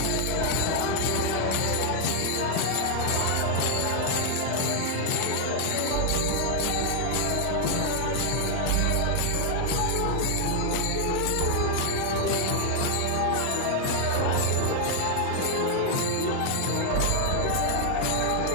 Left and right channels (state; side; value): different; both; correlation 0.00